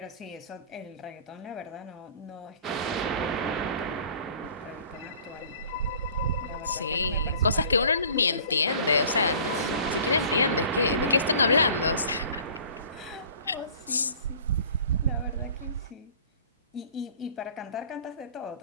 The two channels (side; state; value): both; inverted; correlation -0.48